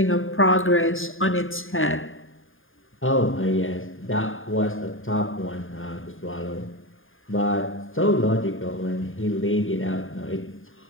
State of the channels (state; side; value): late; right; 0.59 ms